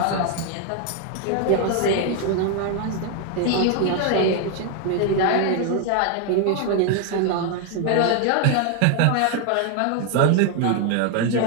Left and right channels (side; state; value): both; different; correlation 0.00